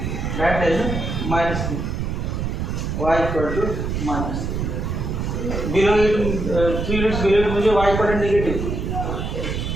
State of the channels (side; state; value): right; noise; rumble, 2 dB below the sound